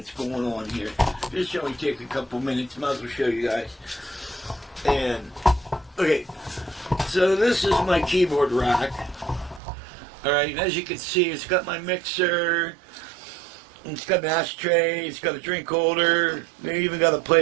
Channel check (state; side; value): drops out; left; at 9.6 s